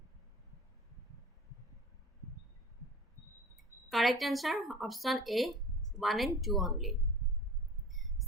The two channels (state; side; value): normal; both; correlation 0.41